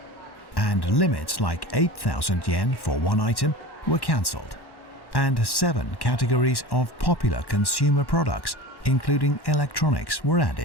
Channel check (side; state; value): right; late; 1.1 ms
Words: And limits like 8,000 yen for one item were cancelled. And 7 categories of popular consumer products, including electronics, were